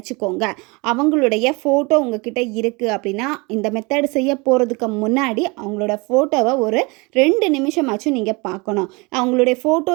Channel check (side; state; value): left; quieter; 27.0 dB